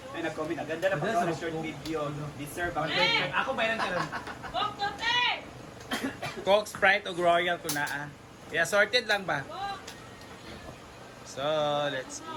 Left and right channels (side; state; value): both; identical; correlation 1.00